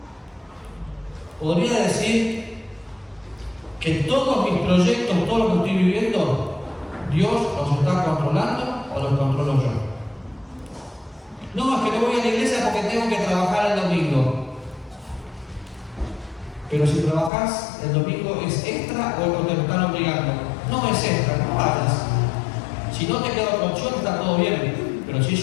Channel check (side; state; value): right; drops out; at 17.3 s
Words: ¿Podría decir que todos mis proyectos, todo lo que estoy viviendo, Dios los está controlando o los controlo yo? No, es que no voy a la iglesia porque tengo que trabajar el domingo. Pero si trabajas el domingo, ¿es extra o te lo están obligando? No es extra, no vayas. Si no te queda otra opción, está todo bien. Pero si